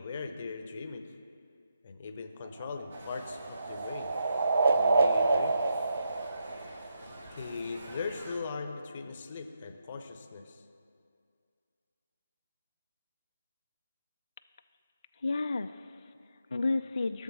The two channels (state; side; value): inverted; both; correlation -0.83